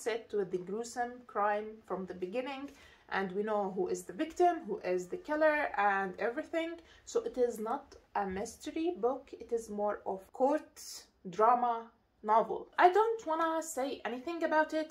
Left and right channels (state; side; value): identical; both; correlation 1.00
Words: it with the gruesome crime from the beginning, and we know who is the victim, who is the killer, and everything. So it is not a mystery book, it is more of court drama novel. I don't wanna say anything about